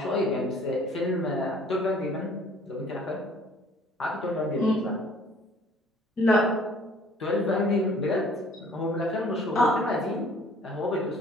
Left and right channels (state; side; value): normal; both; correlation 0.55